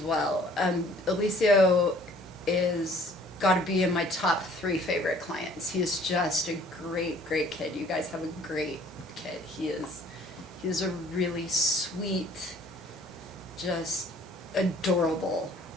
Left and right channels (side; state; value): both; normal; correlation 0.55